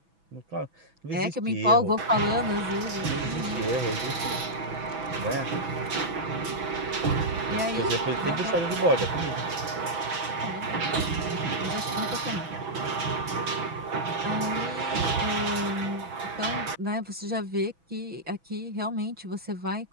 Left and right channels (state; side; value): late; left; 6.1 ms